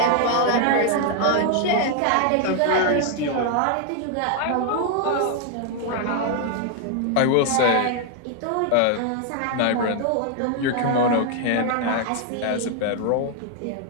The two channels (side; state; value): both; different; correlation 0.00